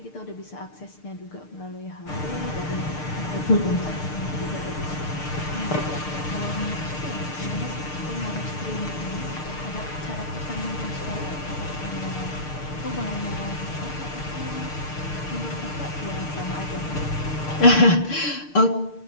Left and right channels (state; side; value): late; right; 6.6 ms